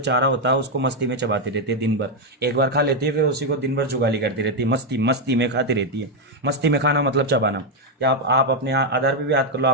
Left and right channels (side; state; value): both; normal; correlation 0.02